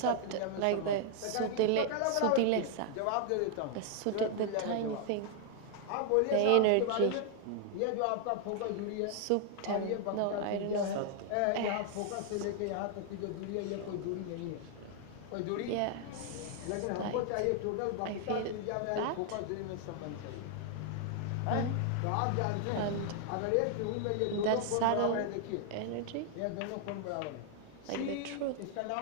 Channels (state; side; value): different; both; correlation 0.00